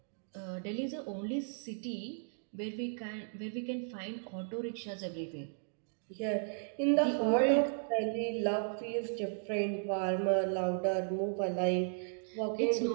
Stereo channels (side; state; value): left; silent; digital silence